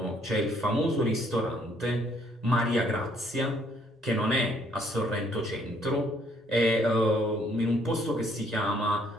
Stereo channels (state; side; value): normal; both; correlation 0.66